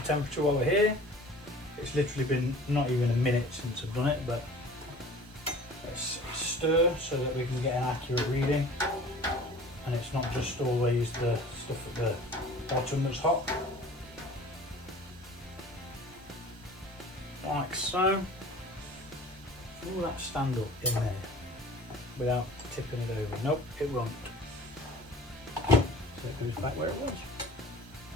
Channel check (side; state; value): both; normal; correlation 0.44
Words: temperature while we're here. It's literally been not even a minute since I've done it, but let's stir so that we can get an accurate reading, and it's not just always the stuff at the bottom that's hot. Like so. Will that stand up in there without tipping it over? Nope, it won't. So it goes back where it was.